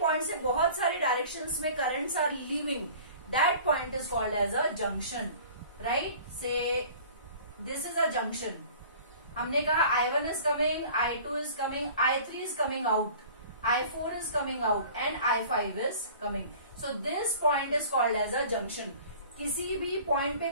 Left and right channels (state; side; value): inverted; both; correlation -0.45